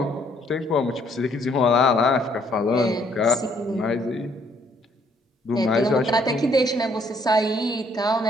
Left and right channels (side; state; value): both; normal; correlation 0.66